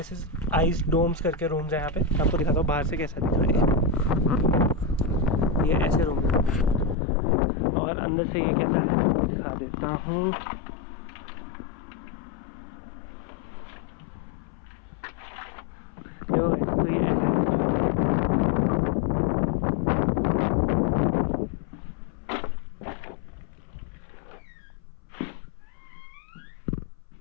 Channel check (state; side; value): drops out; right; at 7.0 s